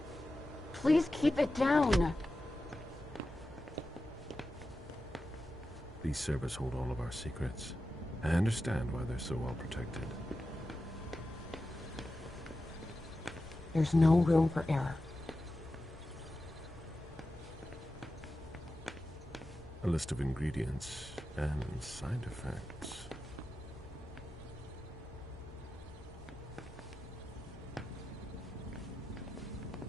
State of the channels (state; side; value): normal; both; correlation 0.92